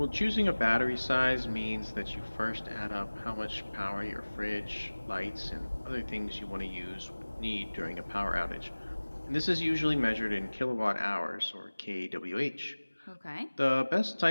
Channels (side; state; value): both; inverted; correlation -1.00